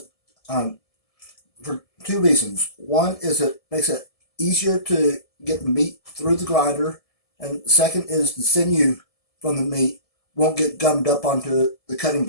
for 2 reasons. One is it makes it easier to get the meat through the grinder, and second is the sinew from the meat won't get gummed up onto the cutting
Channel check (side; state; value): right; late; 1.7 ms